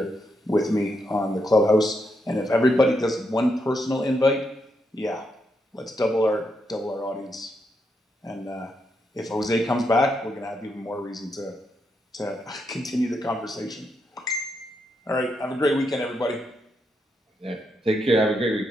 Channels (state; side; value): normal; both; correlation 0.81